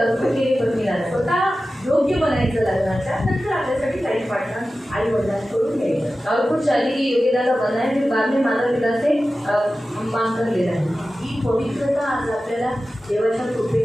खुद के लिए पत्नी लाना। स्वतः योग्य बनायचं लग्नाच्या नंतर आपल्यासाठी लाईफ पार्टनर आई वडिलांकडून घ्यायचं. और खुद शादी की योग्यता का बनना है, फिर बाद में माता पिता से मांग कर लेना है। ही पवित्रता आज आपल्याला देवाच्या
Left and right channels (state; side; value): normal; both; correlation 0.94